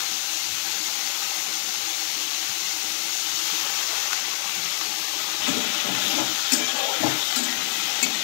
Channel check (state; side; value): silent; right; 55 dB below the other